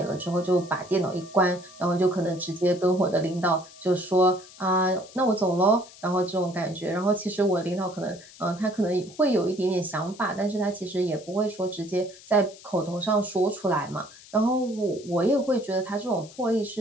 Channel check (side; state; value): left; noise; hiss, 21 dB below the sound